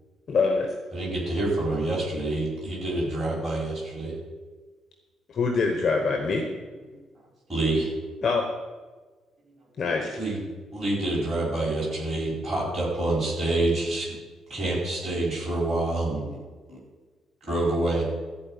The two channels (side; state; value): both; normal; correlation 0.75